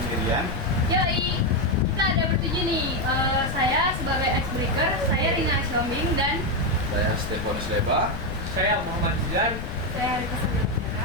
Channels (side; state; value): left; noise; rumble, 6 dB below the sound